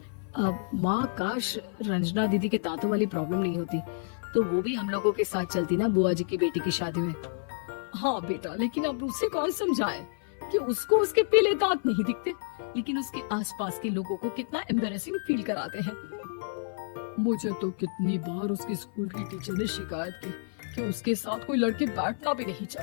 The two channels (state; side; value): silent; right; 58 dB below the other